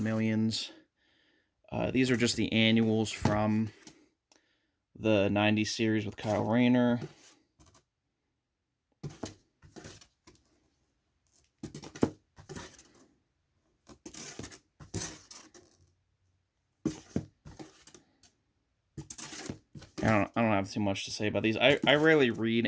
These are just the annuals from the 90s series with Kyle Rayner. I don't have too much to say about these. I rarely read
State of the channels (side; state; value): both; identical; correlation 1.00